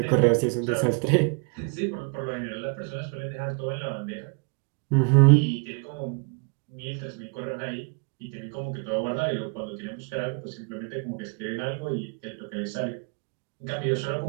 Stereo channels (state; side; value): quieter; left; 35.3 dB